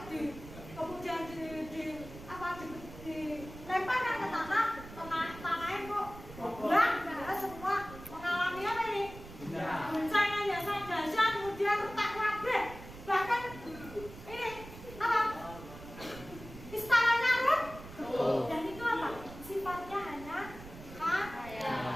kemudian dilemparkan ke tanahnya kok buang, semua mengalami apa ini? Guncangan yang sangat dahsyat, kemudian retak kabeh, bahkan ini apa? Istananya runtuh. Dan itu apa? Sifatnya hanya khayal.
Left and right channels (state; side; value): noise; right; rumble, 15 dB below the sound